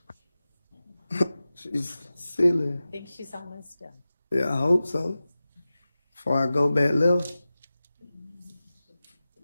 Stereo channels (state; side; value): inverted; both; correlation -0.95